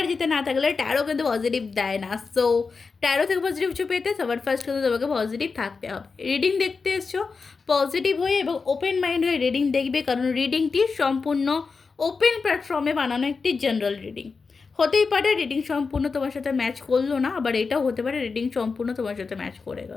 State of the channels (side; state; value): right; quieter; 4.7 dB